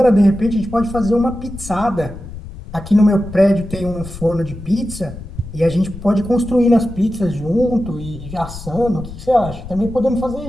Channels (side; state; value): left; noise; rumble, 12 dB below the sound